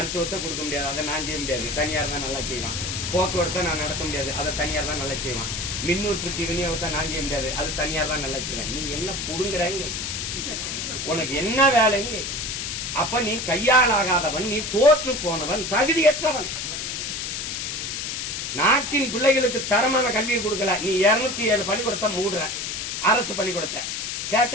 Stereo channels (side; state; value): left; noise; hiss, 4 dB below the sound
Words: கொடுக்க முடியாது, அதை நான் செய்ய முடியாது, தனியார் தான் நல்லா செய்வான். போக்குவரத்தை நான் நடத்த முடியாது, அதை தனியார் தான் நல்லா செய்வான். மின் உற்பத்தி விநியோகத்தை நான் செய்ய முடியாது, அது தனியார் தான் நல்லா செய்வேன். நீ என்ன புடுங்குறங்க? உனக்கு என்ன வேலைங்க? அப்ப நீ கையாளாகாதவன், நீ தோற்று போனவன், தகுதியற்றவன். நாட்டின் பிள்ளைகளுக்கு தரமான கல்வியை கொடுக்கல. நீ 207 பள்ளிக்கூடத்தை மூடுற, அரசு பள்ளிக்கூடத்தை.